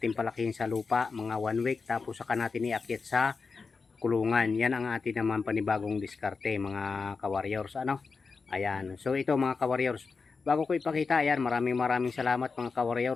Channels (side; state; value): right; quieter; 4.7 dB